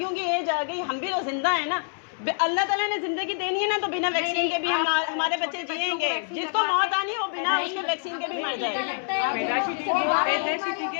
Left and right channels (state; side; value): silent; right; 60 dB below the other